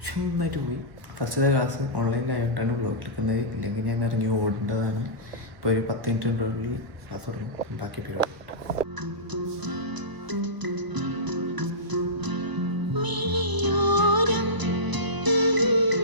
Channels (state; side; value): late; left; 1.0 ms